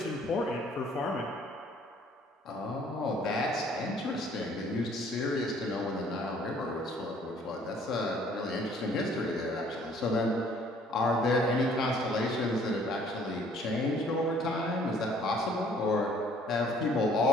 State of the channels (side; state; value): both; normal; correlation 0.58